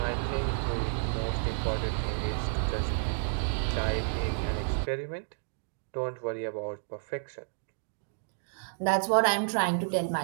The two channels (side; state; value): left; silent; digital silence